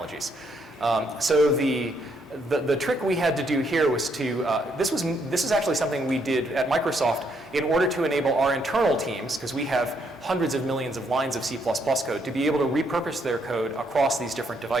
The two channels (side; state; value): both; normal; correlation 0.73